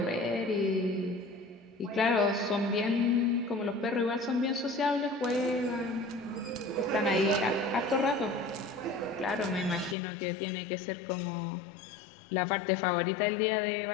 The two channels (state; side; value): drops out; right; at 10.0 s